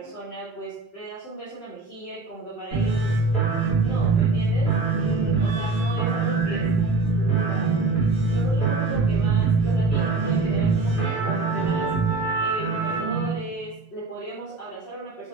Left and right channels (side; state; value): left; quieter; 3.7 dB